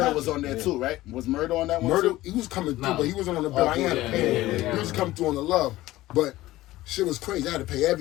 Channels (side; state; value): right; quieter; 16.8 dB